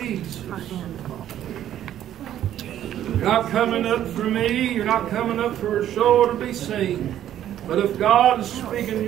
You're not coming up for me. You're not coming up for a show to be seen. But if God is speaking to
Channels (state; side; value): quieter; left; 11.5 dB